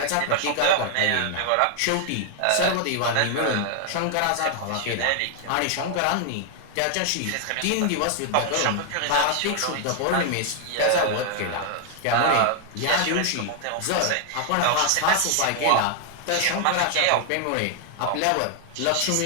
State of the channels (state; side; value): different; both; correlation 0.00